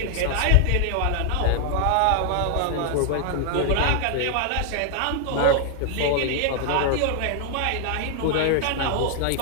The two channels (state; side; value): different; both; correlation 0.00